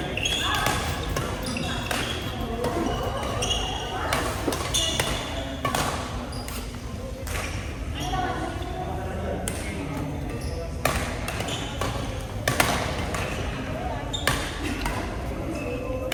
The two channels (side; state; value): both; identical; correlation 1.00